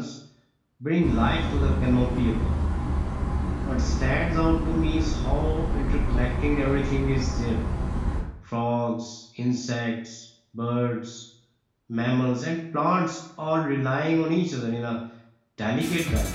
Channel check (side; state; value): both; identical; correlation 1.00